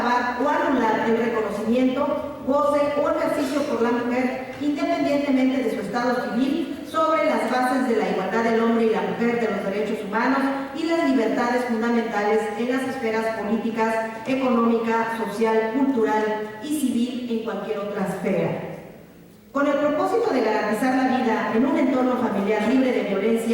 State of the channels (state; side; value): identical; both; correlation 1.00